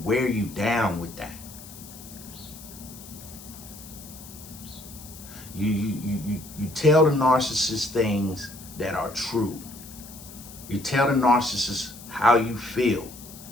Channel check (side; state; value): left; noise; hiss, 17 dB below the sound